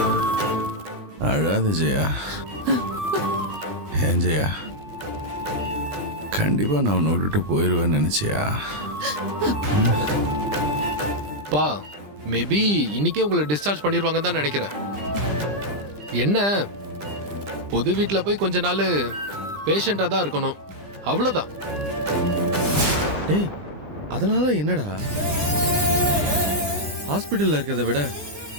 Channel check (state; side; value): late; left; 20 ms